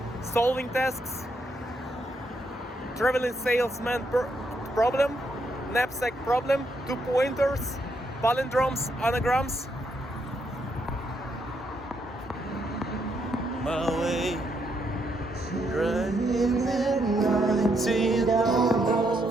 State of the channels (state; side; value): normal; both; correlation 0.77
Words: solving tasks, traveling salesman problem, knapsack problem, 2 pointers, palindromes, anagrams. My way, driving at night in